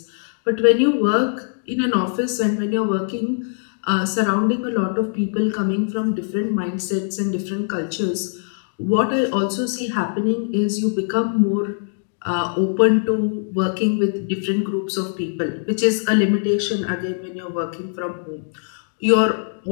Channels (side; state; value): right; silent; digital silence